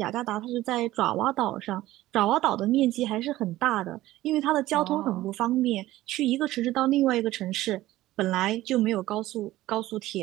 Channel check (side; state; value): left; quieter; 16.1 dB